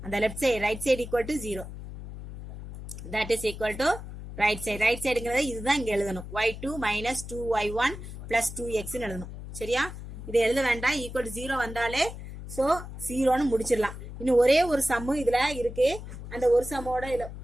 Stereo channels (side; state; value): left; noise; hum, 11 dB below the sound